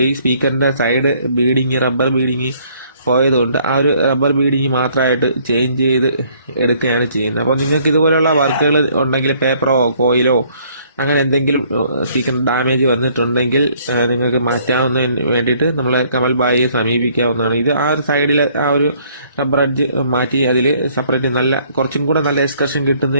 ഈ സ്പീക്കറിന്റെ സൈഡ് ബീഡിങ്, റബ്ബർ ബീഡിങ് പോയതുകൊണ്ട് ആ ഒരു റബ്ബർ ബീഡിങ് മാത്രമായിട്ട് ചേഞ്ച് ചെയ്ത് എടുക്കുകയാണ് ചെയ്യുന്നത്. അപ്പോൾ നിങ്ങൾക്ക് ഇതുപോലെയുള്ള വർക്കുകൾ ഉണ്ടെങ്കിൽ, പേപ്പറോ കോയിലോ അങ്ങനെ എന്തെങ്കിലും സ്പീക്കർ ഡാമേജ് വന്നിട്ടുണ്ടെങ്കിൽ നിങ്ങൾക്ക് മാറ്റാവുന്നതിന് വേണ്ടിയിട്ട് നമ്മളെ കമൽ ബായിയെ സമീപിക്കാവുന്നതാണ്. ഇത് ആ ഒരു സൈഡിലെ ആ ഒരു റബ്ബർ അഡ്ജ് മാറ്റി അതിൽ സെപ്പറേറ്റ് കുറച്ചും കൂടെ നല്ല എക്സ്കർഷൻ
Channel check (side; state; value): both; inverted; correlation -0.63